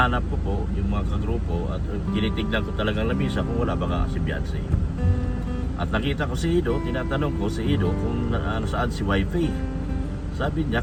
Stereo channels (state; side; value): identical; both; correlation 1.00